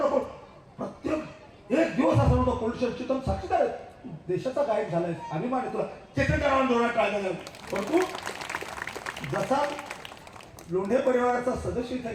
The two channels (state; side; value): identical; both; correlation 1.00